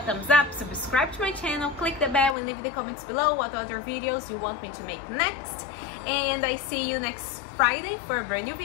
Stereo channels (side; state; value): right; drops out; at 2.4 s